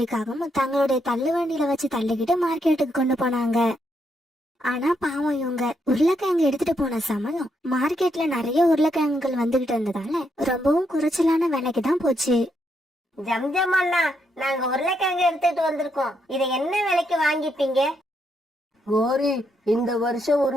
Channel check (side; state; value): both; normal; correlation 0.78